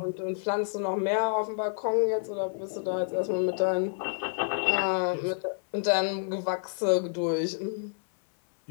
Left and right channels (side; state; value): right; silent; 58 dB below the other